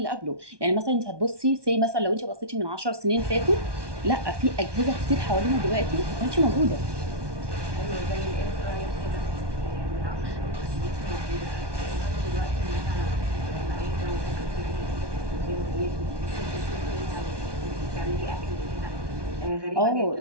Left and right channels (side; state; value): left; late; 1.2 ms